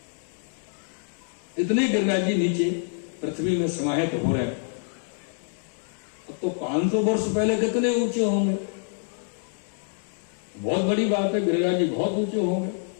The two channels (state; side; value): silent; right; 61 dB below the other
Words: इतने गिरिराज जी नीचे पृथ्वी में समाहित हो रहे हैं। अब तो 500 वर्ष पहले कितने ऊंचे होंगे, बहुत बड़ी बात है, गिरिराज जी बहुत ऊंचे होंगे।